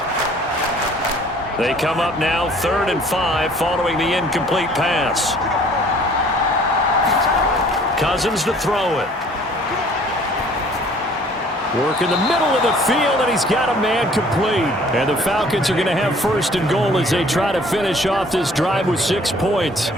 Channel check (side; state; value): both; normal; correlation 0.55